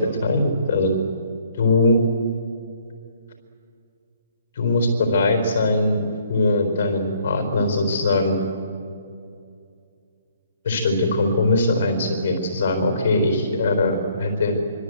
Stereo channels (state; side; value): inverted; both; correlation -0.63